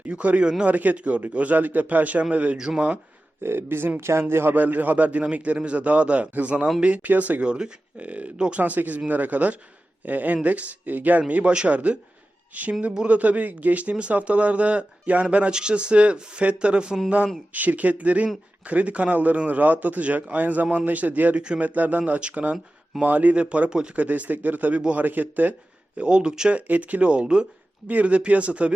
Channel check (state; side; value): normal; both; correlation 0.95